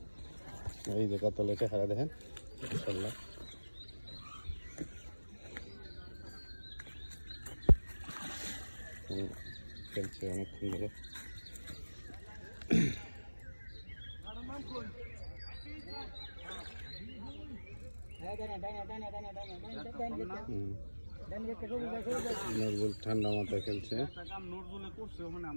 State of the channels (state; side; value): inverted; both; correlation -1.00